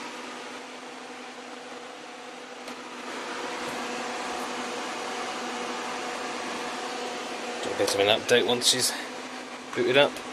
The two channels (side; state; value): both; identical; correlation 1.00